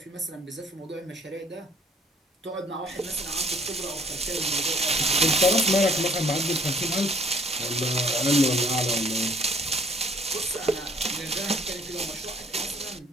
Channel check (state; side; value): normal; both; correlation 0.58